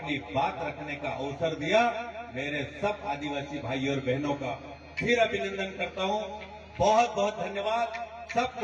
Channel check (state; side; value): identical; both; correlation 1.00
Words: बात रखने का अवसर दिया। मेरे सब आदिवासी भाई और बहनों का फिर अभिनंदन करता हूँ। बहुत बहुत धन्यवाद।